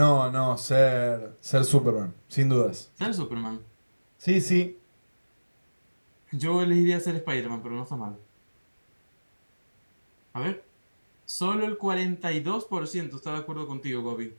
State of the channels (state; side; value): inverted; both; correlation -1.00